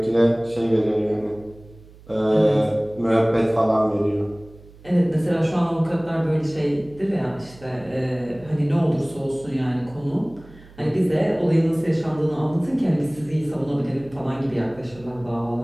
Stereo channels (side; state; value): right; noise; hum, 23 dB below the sound